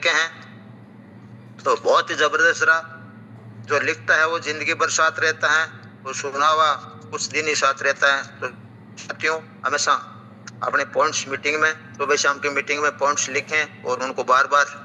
हैं। तो बहुत ही जबरदस्त रहा। जो लिखता है वो जिंदगी भर साथ रहता है, वो सुना हुआ कुछ दिन ही साथ रहता है। तो साथियों हमेशा अपने पॉइंट्स मीटिंग में, सुबह शाम की मीटिंग में पॉइंट्स लिखें और उनको बार बार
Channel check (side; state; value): both; identical; correlation 1.00